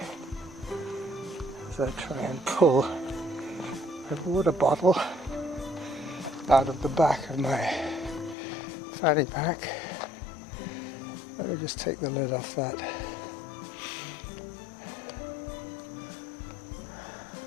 as I try and pull a water bottle out of the back of my fanny pack. Let me just take the lid off that.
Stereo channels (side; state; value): right; drops out; at 8.3 s